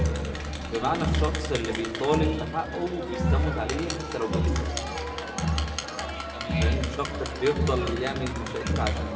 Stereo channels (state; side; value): identical; both; correlation 1.00